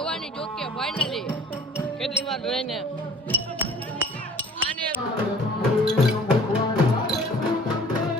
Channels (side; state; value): both; normal; correlation 0.49